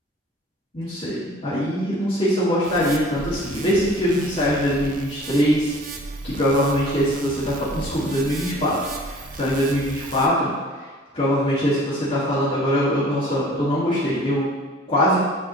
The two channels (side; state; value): both; normal; correlation 0.49